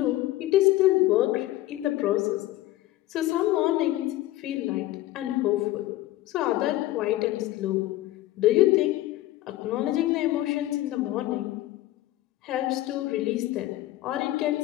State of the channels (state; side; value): quieter; right; 15.9 dB